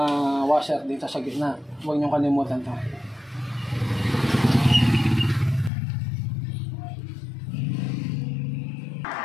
washer dito sa gitna, huwag niyong kalimutan to.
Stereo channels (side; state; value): right; drops out; at 5.7 s